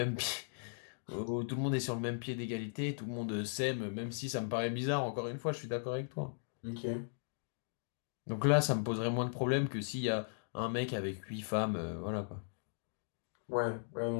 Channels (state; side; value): silent; right; digital silence